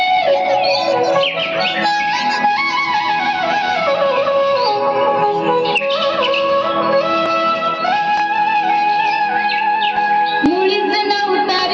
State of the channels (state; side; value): identical; both; correlation 1.00